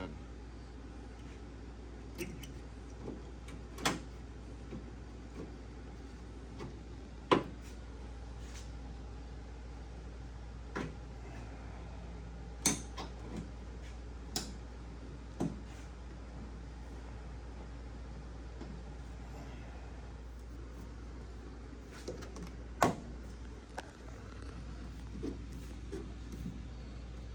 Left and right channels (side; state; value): both; identical; correlation 1.00